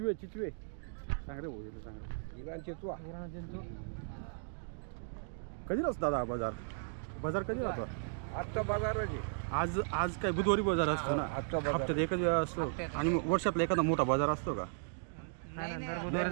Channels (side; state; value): left; silent; digital silence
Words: चिचवे सांग रे भाऊ सांग इराणचे तू कधी असतो दादा बाजार बाजार कधी राहतो आजचा बाजार आहे आज आज काय बुधवारी बाजार असतो ना आजचा बाजार हप्त्यात एकच वेळा असतो आणि वर्षातला एखादा मोठा बाजार असतो का